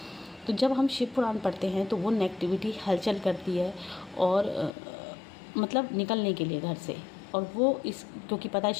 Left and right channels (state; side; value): drops out; right; at 4.7 s